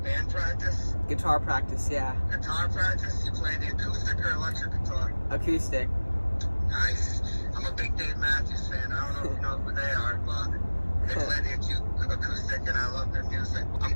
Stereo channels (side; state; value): both; inverted; correlation -1.00